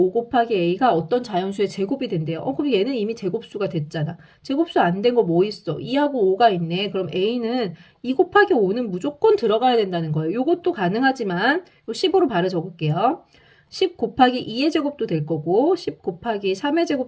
곱하기 a가 어떤 자연수의 제곱이 된대요. 그럼 얘는 이미 제곱수가 됐잖아. 제곱수 안 된 거 뭐 있어? 2하고 5가 있네. 그럼 a는 2 곱하기 5는 무조건 들어가야 된다는 거예요. 요것도 가능하지만 15로 바로 적을게요. 10 곱하기 2의 제곱도 될 거고 10 곱하기 3의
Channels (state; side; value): identical; both; correlation 1.00